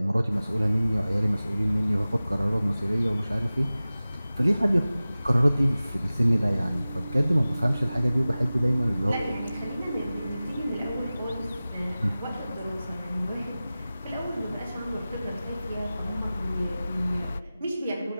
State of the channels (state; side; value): inverted; both; correlation -0.97